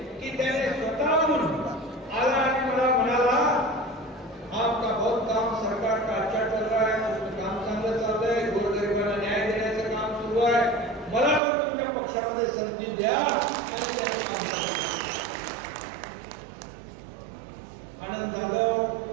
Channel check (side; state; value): left; drops out; at 11.4 s